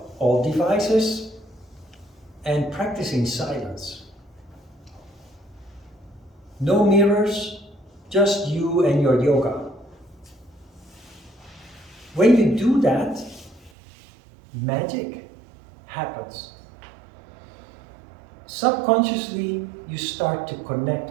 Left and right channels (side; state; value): left; drops out; at 13.7 s